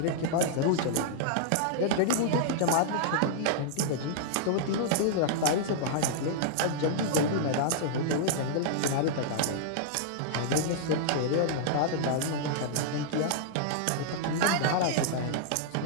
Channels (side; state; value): both; different; correlation -0.01